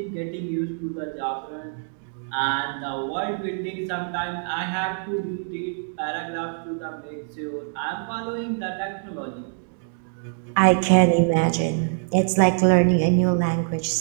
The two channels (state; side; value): silent; left; digital silence